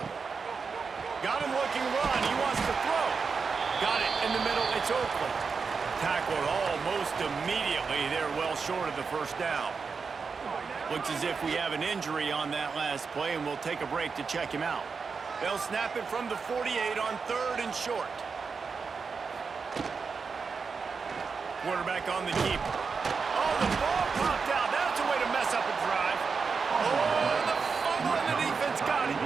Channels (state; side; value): quieter; left; 5.2 dB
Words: Got him looking run. He wants to throw. Got it in the middle. It's Oakland. Tackled almost immediately. They're well short of the first down. Looks as if we have an injury on that last play, and we'll take a break to check him out. They'll snap it from the 48 on 3rd and short. Quarterback on the keeper. Oh, the ball popped out. That's a way to mess up a drive. Oh, the fumble, and the defense got it.